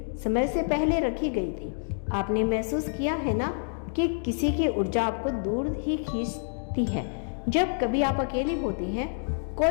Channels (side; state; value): right; silent; digital silence